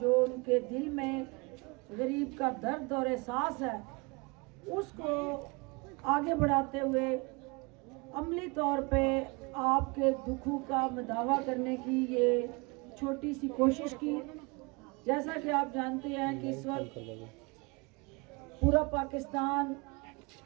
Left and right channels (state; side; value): quieter; left; 28.3 dB